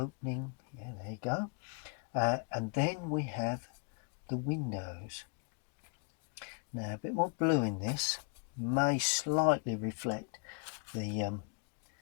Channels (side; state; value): right; quieter; 38.0 dB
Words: Yeah, there you go. And then we have the windows. Now a bit more blue in this, may slightly reflect the